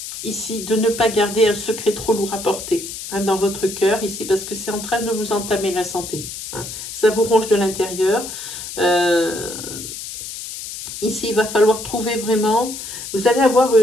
ici de ne pas garder un secret trop lourd à porter dans votre cœur, ici, parce que c'est en train de vous entamer la santé. Ça vous ronge de l'intérieur. Ici, il va falloir trouver vraiment, vous allez avoir,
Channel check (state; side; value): noise; left; hiss, 9 dB below the sound